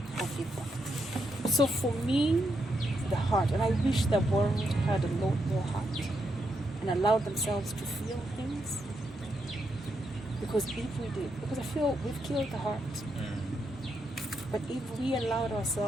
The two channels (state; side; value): normal; both; correlation 0.81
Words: of impact. So for me, the heart, and I wish the world had a lot more heart and allowed themselves to feel things. Because if we did, because I feel we've killed the heart. But if we allowed